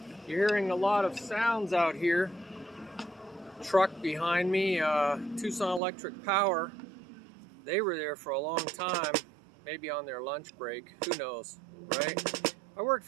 You're hearing a lot of sounds out here. Truck behind me, Tucson Electric Power. They were there for a long time, maybe on their lunch break. Who knows, right? I worked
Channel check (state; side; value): drops out; left; at 5.8 s